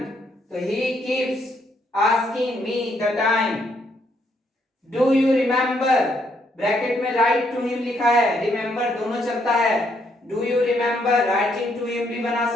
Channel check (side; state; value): both; normal; correlation 0.73